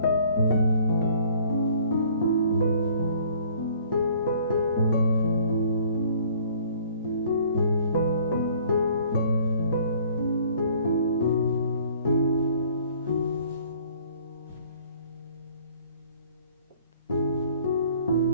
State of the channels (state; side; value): inverted; both; correlation -0.56